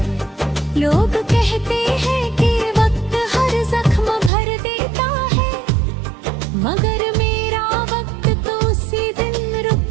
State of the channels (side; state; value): left; drops out; at 4.3 s